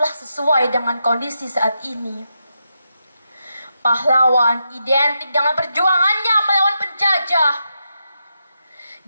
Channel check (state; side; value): inverted; both; correlation -0.85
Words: sesuai dengan kondisi saat ini. Pahlawan identik dengan perjuangannya melawan penjajah.